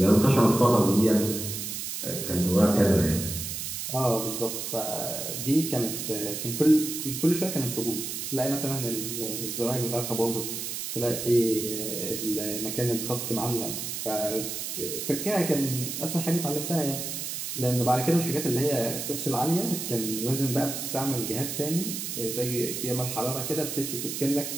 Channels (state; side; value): noise; right; hiss, 5 dB below the sound